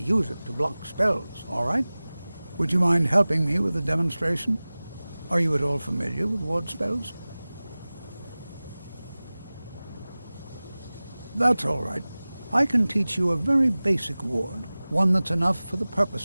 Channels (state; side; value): inverted; both; correlation -0.98